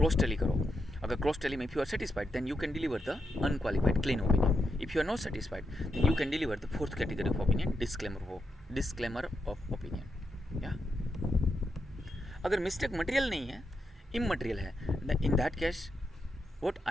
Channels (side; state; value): both; normal; correlation 0.84